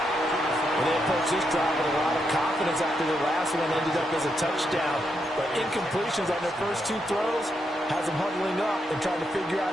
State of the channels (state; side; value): normal; both; correlation 0.81